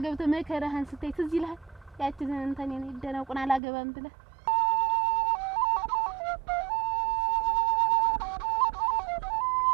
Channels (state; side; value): drops out; left; at 3.6 s